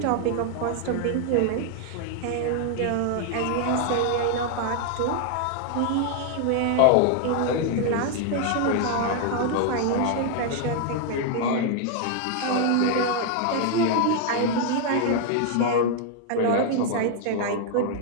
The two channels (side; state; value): both; different; correlation 0.00